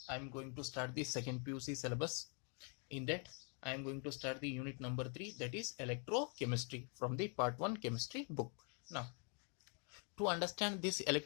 I am going to start the second PUC syllabus. In that I am going to start the unit number 3, that is electrochemistry, from the part 1 chemistry book. Now, to understand this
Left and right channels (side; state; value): right; quieter; 38.3 dB